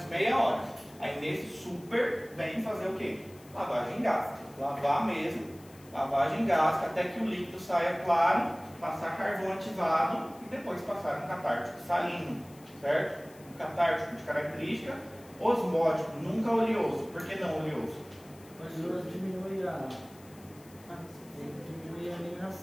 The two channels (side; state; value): left; noise; hiss, 24 dB below the sound